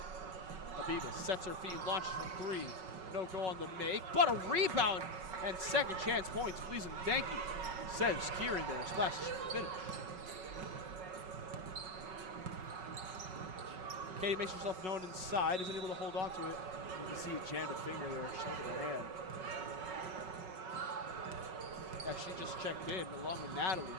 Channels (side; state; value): left; late; 5.4 ms